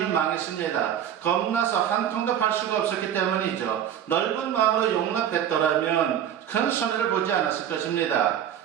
망했습니다. 겁나서 한 통도 팔 수가 없었기 때문이죠. 넓은 마음으로 용납했더라면 큰 손해를 보지 않았을 것입니다.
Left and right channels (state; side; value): quieter; left; 9.8 dB